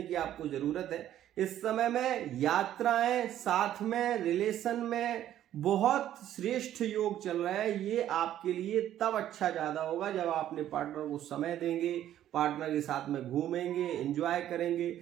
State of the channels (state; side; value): quieter; left; 11.8 dB